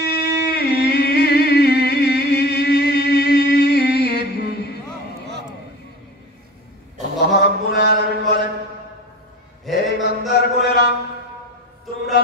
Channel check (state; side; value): normal; both; correlation 0.35